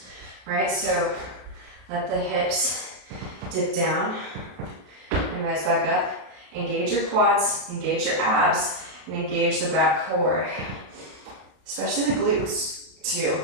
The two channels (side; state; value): left; late; 33 ms